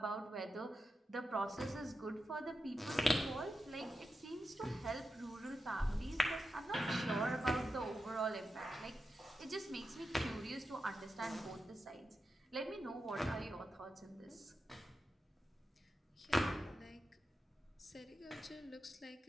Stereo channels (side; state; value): both; normal; correlation 0.89